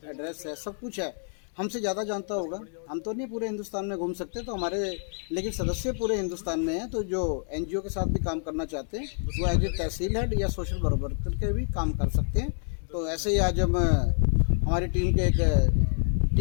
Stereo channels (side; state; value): right; silent; 59 dB below the other